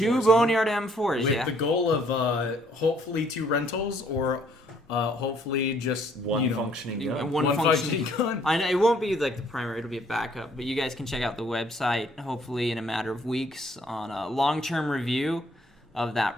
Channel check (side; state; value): both; normal; correlation 0.64